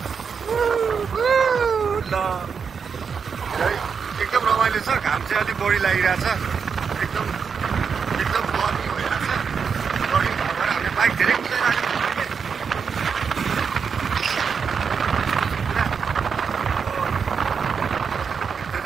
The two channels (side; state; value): left; quieter; 6.1 dB